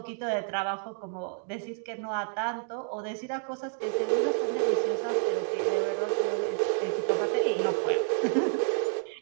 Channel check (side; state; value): left; silent; 58 dB below the other